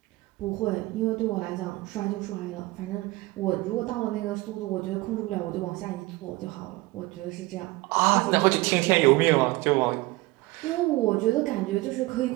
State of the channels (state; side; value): quieter; left; 20.9 dB